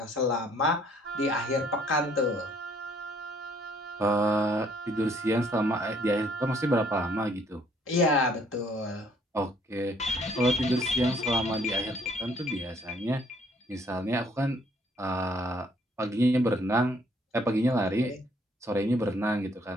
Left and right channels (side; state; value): both; normal; correlation 0.63